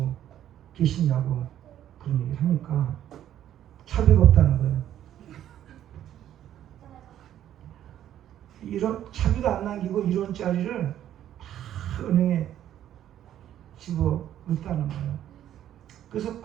계시냐고 그런 얘기를 하니까 차비가 없다는 거예요. 이런 차비도 안 남기고 1원짜리를 다 은행에 집어 넣었다는 거예요. 그래서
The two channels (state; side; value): quieter; left; 11.3 dB